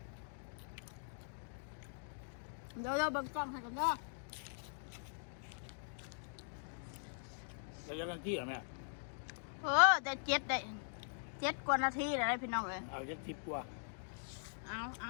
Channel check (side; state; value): right; silent; digital silence